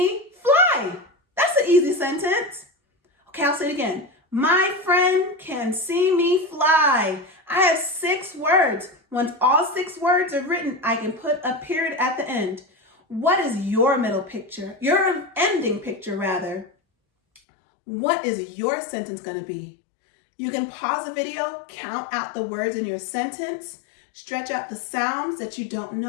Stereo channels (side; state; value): right; drops out; at 17.4 s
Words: fly. That's an easy sentence. Okay, I'll say it again. My friend can see me fly. I have 6 words. Once all 6 words are written, I can put a period at the end. What is your middle picture? Your ending picture, rather. What is your sentence going to be? You can pause the video, count out the words in your sentence, Stretch out the sounds that you don't